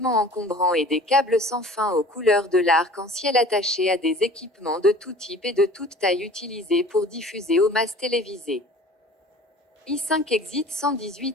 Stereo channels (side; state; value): both; normal; correlation 0.45